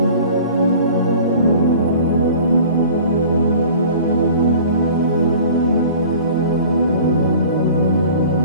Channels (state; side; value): inverted; both; correlation -0.45